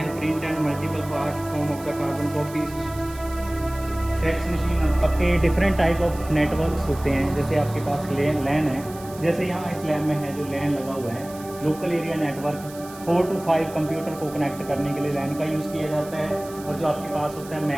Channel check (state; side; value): noise; right; hiss, 18 dB below the sound